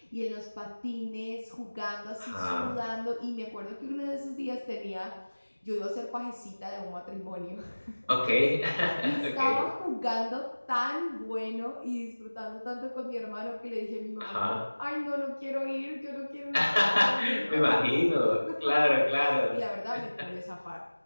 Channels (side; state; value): both; inverted; correlation -1.00